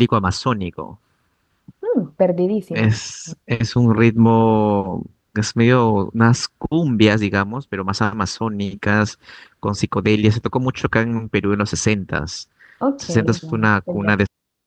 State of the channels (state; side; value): identical; both; correlation 1.00